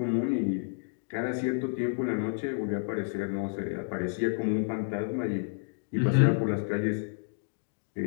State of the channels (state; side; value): silent; right; digital silence